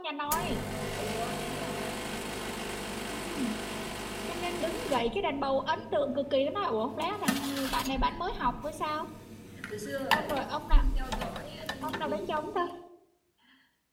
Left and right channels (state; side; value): identical; both; correlation 1.00